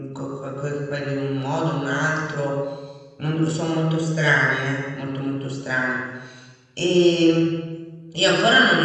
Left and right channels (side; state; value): both; identical; correlation 1.00